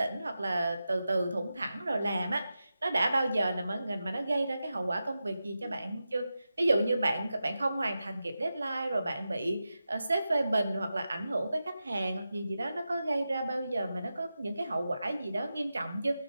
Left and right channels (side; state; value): both; inverted; correlation -0.91